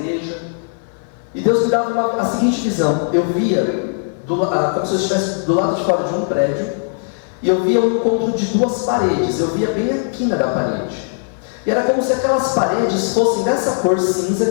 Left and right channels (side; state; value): right; silent; 55 dB below the other